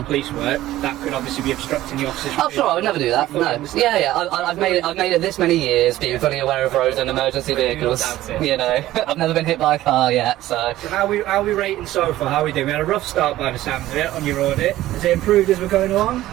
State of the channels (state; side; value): quieter; left; 15.1 dB